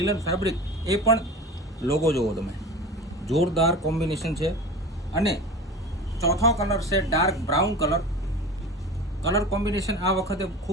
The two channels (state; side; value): normal; both; correlation 0.34